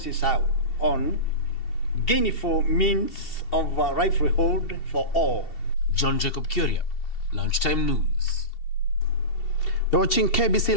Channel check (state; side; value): late; right; 2.7 ms